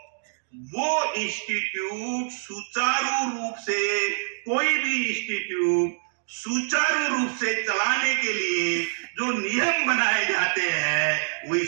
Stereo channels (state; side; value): silent; left; digital silence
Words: वो इंस्टीट्यूट सुचारू रूप से, कोई भी इंस्टीट्यूट सुचारू रूप से चलाने के लिए जो नियम बनाए जाते हैं वही